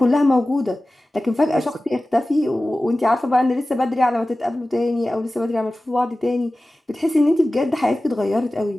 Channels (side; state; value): both; normal; correlation 0.96